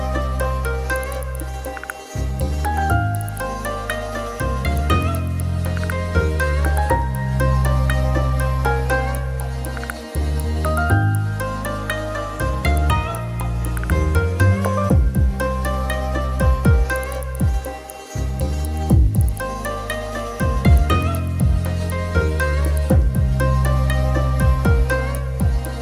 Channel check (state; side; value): identical; both; correlation 1.00